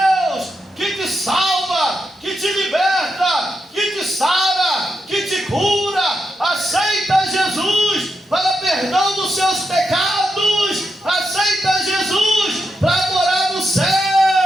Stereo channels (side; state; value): both; normal; correlation 0.85